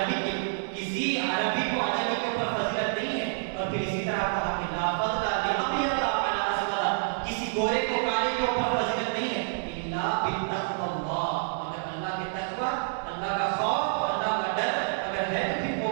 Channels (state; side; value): silent; left; digital silence